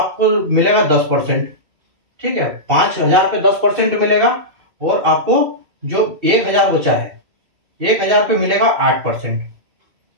मिलेगा 10%। ठीक है, 5,000 पे 10% मिलेगा, और आपको जो 1,000 बचा है, 1,000 पे मिलेगा 8%।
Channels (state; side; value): late; left; 2.6 ms